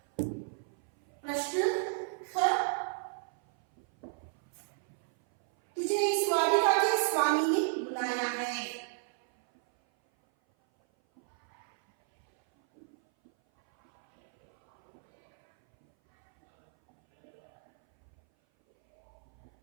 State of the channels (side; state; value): left; silent; 56 dB below the other